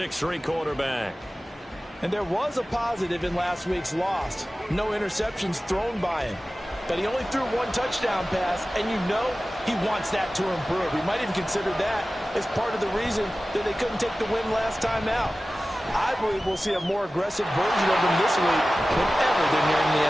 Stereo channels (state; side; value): normal; both; correlation 0.96